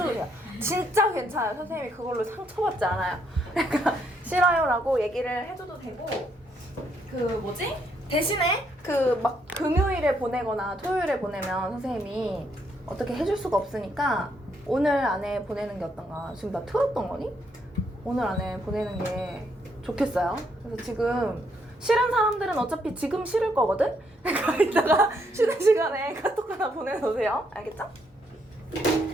돼요. 진짜 괜찮아요. 선생님이 그걸로 상처받지 않아요. 그러니까 싫어요 라고 얘기를 해줘도 되고, 대신에 막 금요일에 보내거나 토요일에 보내면 선생님이 어떻게 해줄 수가 없으니까 오늘 안에 보내는 게 어떤가. 지금 나 틀었던 거니? 오늘 안에 보내는 게 좋겠어요. 그래서 지금 싫은 사람들은 어차피 지금 싫을 거거든? 그러니까 이따가 쉬는 시간에 카톡 하나 보내놓으세요. 알겠죠?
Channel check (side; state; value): both; normal; correlation 0.73